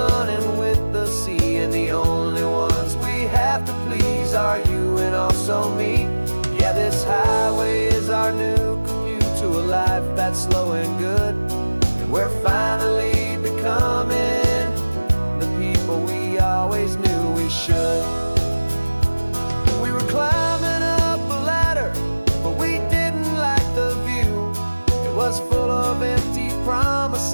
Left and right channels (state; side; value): inverted; both; correlation -1.00